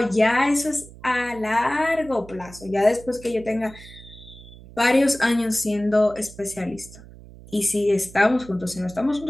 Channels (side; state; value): right; noise; hum, 19 dB below the sound